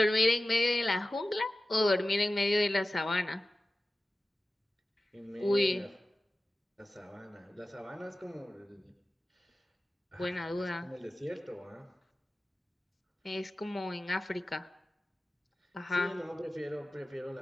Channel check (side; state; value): both; normal; correlation 0.95